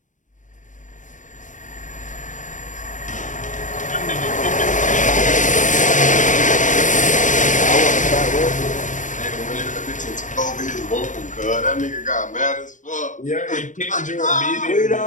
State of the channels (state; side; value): late; right; 0.37 ms